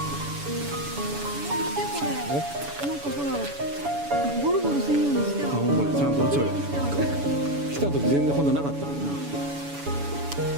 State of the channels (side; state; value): left; late; 7.0 ms